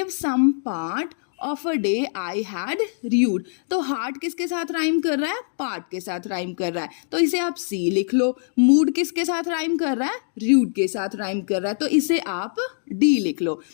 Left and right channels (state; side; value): silent; right; digital silence